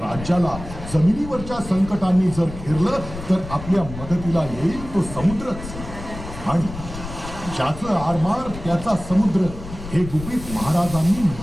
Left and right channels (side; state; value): left; noise; rumble, 11 dB below the sound